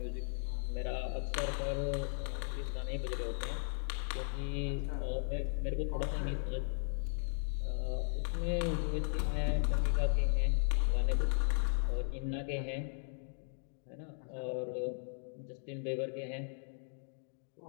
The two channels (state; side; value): silent; right; 53 dB below the other